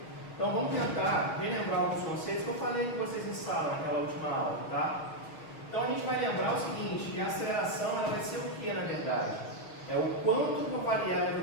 Então vamos tentar relembrar alguns conceitos que eu falei que vocês em sala naquela última aula, tá? Então a gente vai lembrar o seguinte, que a aceleração ela vai ser o que na verdade? É o quanto que eu variar a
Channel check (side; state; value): right; late; 6.3 ms